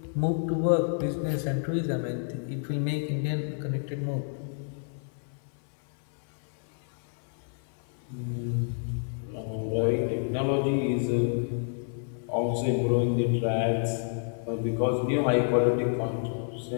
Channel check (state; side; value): silent; right; 58 dB below the other